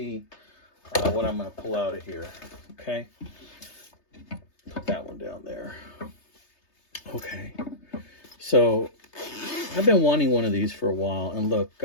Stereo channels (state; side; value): late; right; 3.3 ms